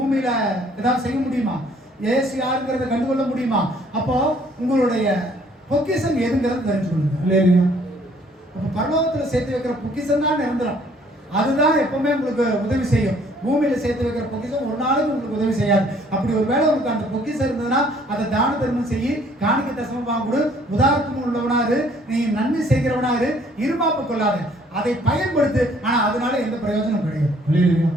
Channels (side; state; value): both; normal; correlation 0.60